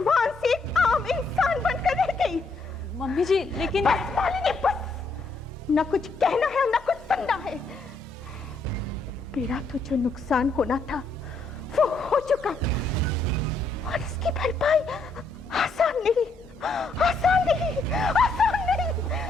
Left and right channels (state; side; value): quieter; right; 3.4 dB